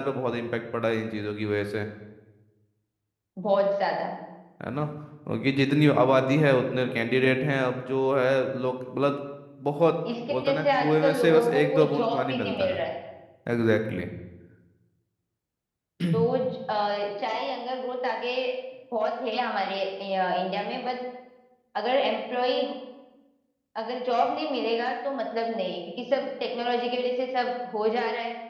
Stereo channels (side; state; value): both; identical; correlation 1.00